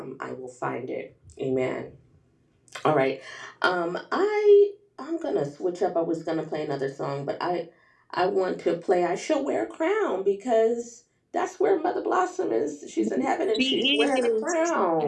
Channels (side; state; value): both; identical; correlation 1.00